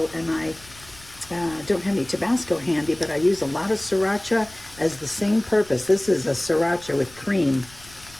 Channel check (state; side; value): noise; left; rumble, 22 dB below the sound